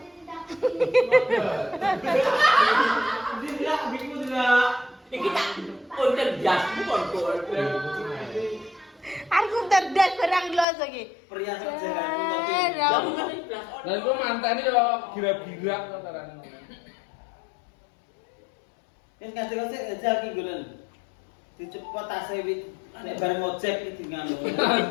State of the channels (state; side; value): drops out; right; at 10.7 s